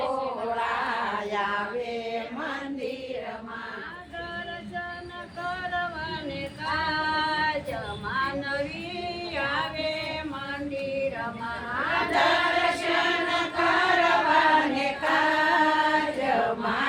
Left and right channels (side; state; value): both; identical; correlation 1.00